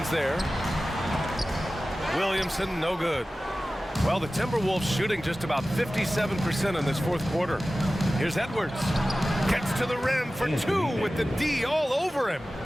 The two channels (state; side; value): normal; both; correlation 0.96